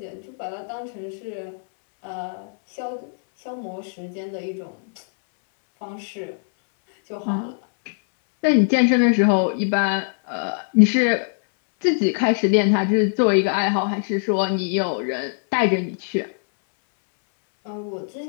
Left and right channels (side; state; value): right; silent; 64 dB below the other